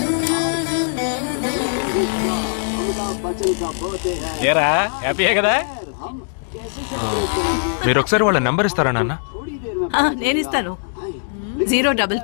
ఏరా, హ్యాపీయే కదా? మీరు ఒకసారి వాళ్ళ నెంబర్ ఇస్తారా నాన్న? నేను ఇస్తాను.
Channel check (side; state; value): right; silent; digital silence